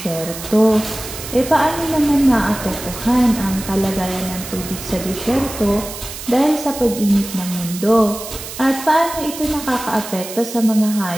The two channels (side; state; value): right; noise; hiss, 11 dB below the sound